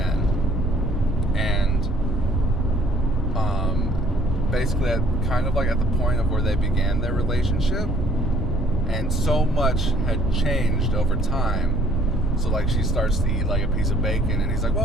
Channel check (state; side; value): normal; both; correlation 0.59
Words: And basically kind of like at the point of where they began their relationship. And so much had changed over time. So like she starts to eat like a piece of bacon, and he's like,